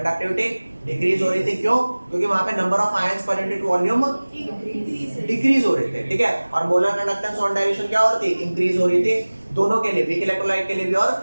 डिक्रीज हो रही थी। क्यों? क्योंकि वहां पे number of ions per unit volume decrease हो रहे थे। ठीक है। और मोलर कंडक्टेंस ऑन डायल्यूशन क्या हो रही थी? इंक्रीज हो रही थी, दोनों के लिए, वीक इलेक्ट्रोलाइट के लिए भी और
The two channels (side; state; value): both; inverted; correlation -1.00